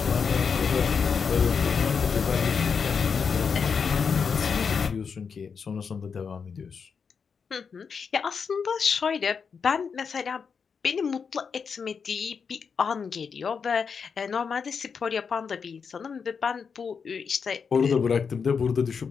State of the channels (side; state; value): right; quieter; 6.0 dB